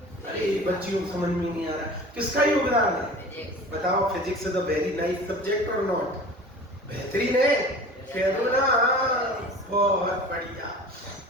अरे बच्चियों को समझ में नहीं आ रहा, किसका योगदान है? बताओ। Physics is a very nice subject और नॉट? बेहतरीन है, कह दो ना। बहुत बढ़िया।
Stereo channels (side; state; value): both; normal; correlation 0.39